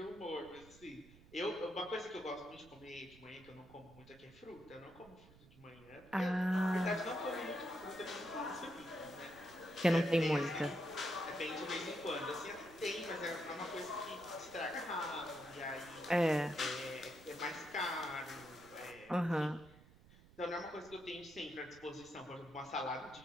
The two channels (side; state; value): right; noise; rumble, 22 dB below the sound